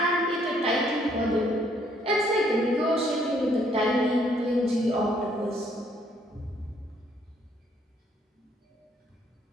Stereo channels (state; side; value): normal; both; correlation 0.67